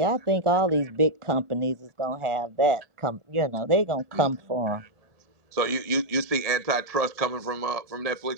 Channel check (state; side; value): late; left; 1.7 ms